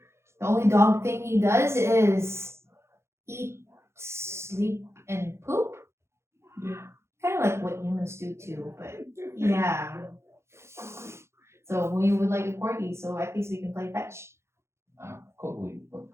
the only dog thing he does is eat, sleep, and poop. Yeah. Kind of like what humans do too, but yeah. So we would like a corgi, so at least we can play fetch. Corgi, but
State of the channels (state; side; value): late; left; 0.13 ms